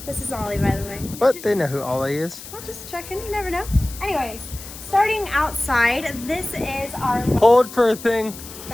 This is Ollie, by the way. But they know who Ollie is. Well, just checking, you never know. Anyways, starting outside, this is our Hold for a thing.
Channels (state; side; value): noise; left; hiss, 14 dB below the sound